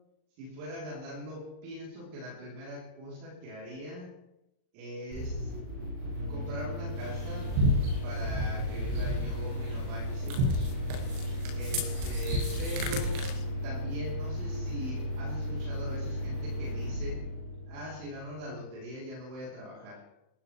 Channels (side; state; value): left; late; 38 ms